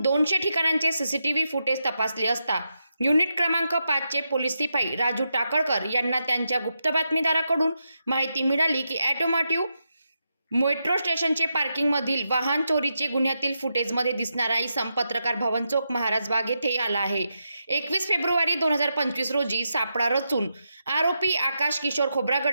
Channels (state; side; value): inverted; both; correlation -0.85